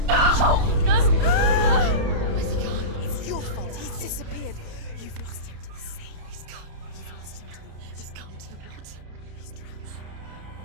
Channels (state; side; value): late; left; 31 ms